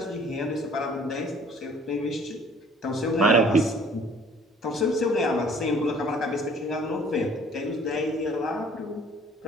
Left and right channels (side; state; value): both; normal; correlation 0.54